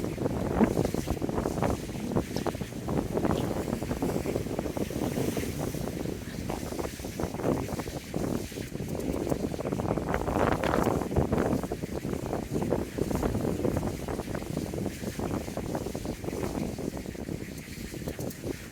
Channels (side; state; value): both; identical; correlation 1.00